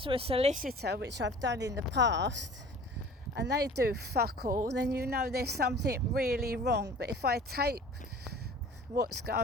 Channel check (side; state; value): both; normal; correlation 0.45